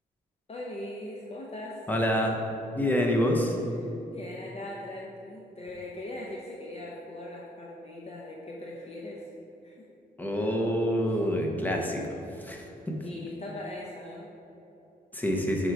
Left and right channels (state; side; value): normal; both; correlation 0.66